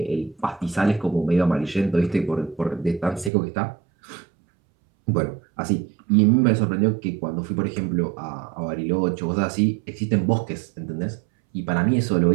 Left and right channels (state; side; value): drops out; left; at 3.3 s